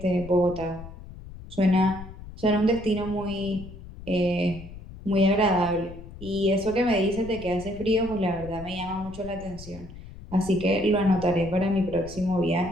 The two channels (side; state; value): left; noise; rumble, 14 dB below the sound